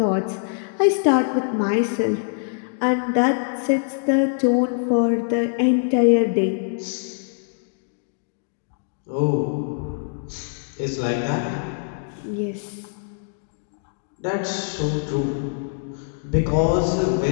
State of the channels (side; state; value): right; silent; digital silence